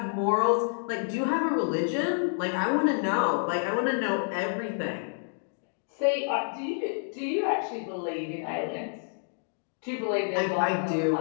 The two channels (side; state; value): right; silent; digital silence